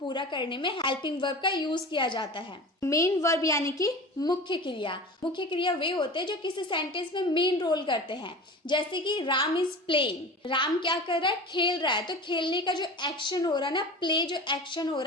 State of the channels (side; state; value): both; normal; correlation 0.35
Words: करने में हेल्पिंग वर्ब का यूज किया जाता है। मेन वर्ब यानी कि मुख्य क्रिया। मुख्य क्रिया वे होते हैं जो किसी सेंटेंस में मेन रोल करते हैं। जैसे कि राम इज प्लेइंग, राम क्या कर रहा है, खेल रहा है। तो खेलने का जो एक्शन हो रहा है ना, प्ले जो एक्शन हो